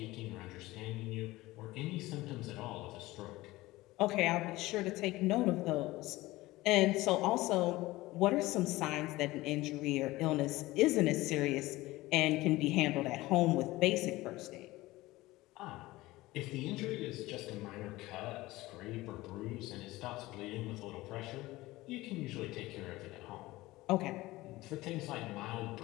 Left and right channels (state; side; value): quieter; right; 18.9 dB